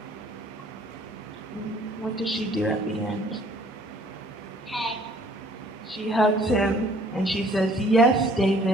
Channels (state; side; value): normal; both; correlation 0.57